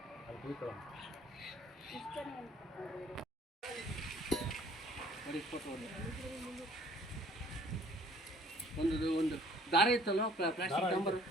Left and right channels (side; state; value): both; normal; correlation 0.56